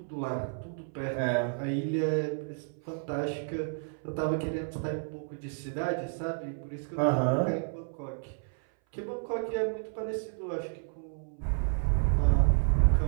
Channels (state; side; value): silent; left; 57 dB below the other